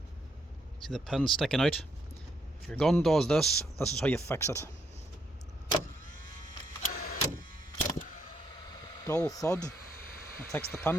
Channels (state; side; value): normal; both; correlation 0.74